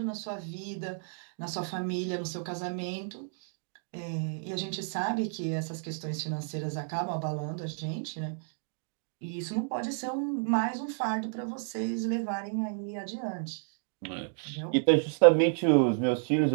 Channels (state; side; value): silent; left; digital silence